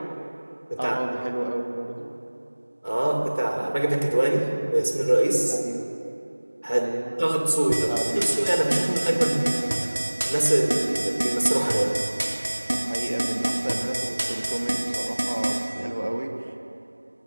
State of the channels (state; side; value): inverted; both; correlation -1.00